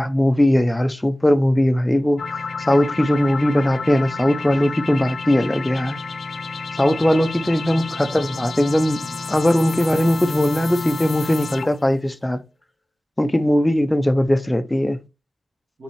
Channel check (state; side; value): normal; both; correlation 0.98